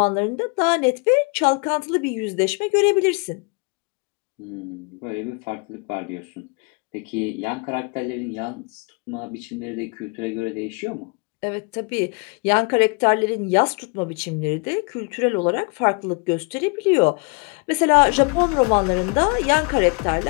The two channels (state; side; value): quieter; right; 32.8 dB